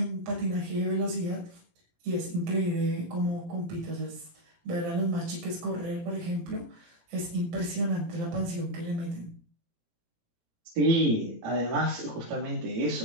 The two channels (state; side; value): late; left; 17 ms